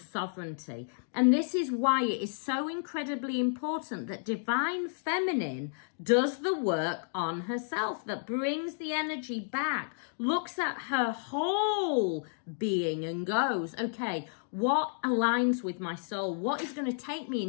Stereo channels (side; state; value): right; silent; digital silence